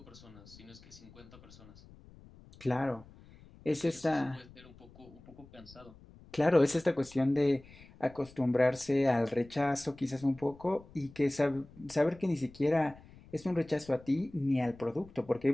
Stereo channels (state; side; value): noise; left; rumble, 22 dB below the sound